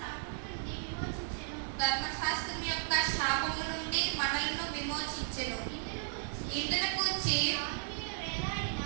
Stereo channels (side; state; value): left; silent; digital silence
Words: ధర్మశాస్త్రం యొక్క శాపము నుండి మనలను విమోచించెను. ఇందును గూర్చి